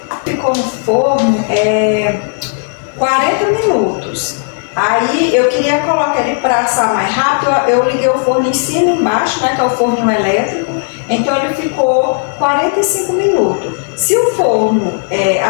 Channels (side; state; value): right; silent; 59 dB below the other